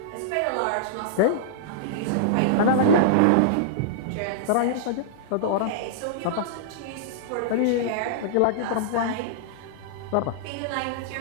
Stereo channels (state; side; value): different; both; correlation -0.02